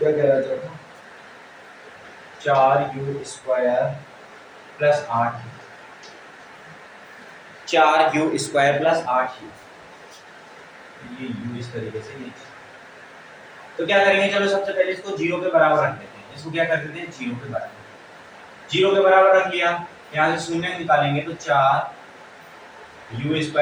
कह रहा है, चौथा 4u² + 8, 4u² + 8u, ये u इस तरीके से नीचे। तो क्या करेंगे, चलो सबसे पहले इसको 0 के बराबर रख देते हैं। इसको क्या कर देते हैं, 0 के बराबर। 0 के बराबर रख लिया, यहाँ से शून्य निकालेंगे तो 4u²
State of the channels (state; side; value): identical; both; correlation 1.00